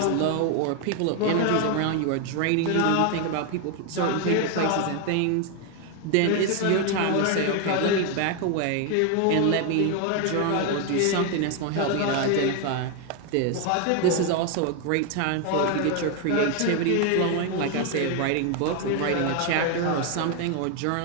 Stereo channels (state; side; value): different; both; correlation 0.01